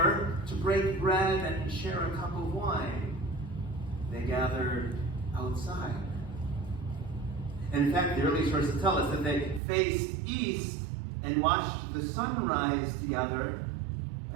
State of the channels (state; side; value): drops out; left; at 9.6 s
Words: to break bread and share a cup of wine? They gathered outside. And in fact, the early sources tell us that they faced east and watched the sunrise together